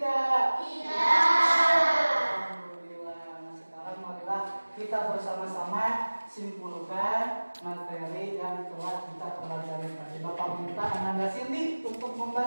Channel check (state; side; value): inverted; both; correlation -1.00